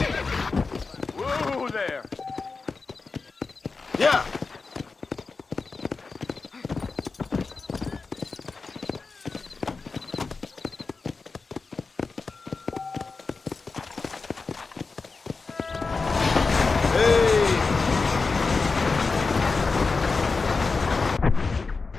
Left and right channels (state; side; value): quieter; right; 4.3 dB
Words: Whoa there. Yeah.